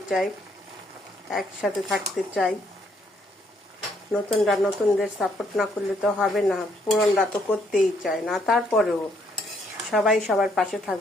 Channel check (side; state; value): both; normal; correlation 0.70